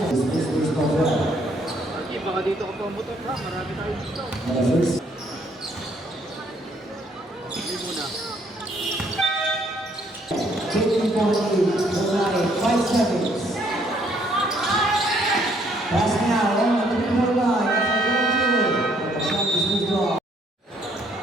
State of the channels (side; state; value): both; normal; correlation 0.67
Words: a space for well. Baka dito ka pumutok ha, marami tayo dito. First. Hindi muna. Taking for the lead, 5 seconds. Pass now on the 3-point line. That's a goal. The shot is moved off.